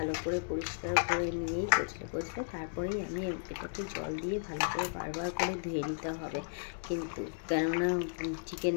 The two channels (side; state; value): right; silent; digital silence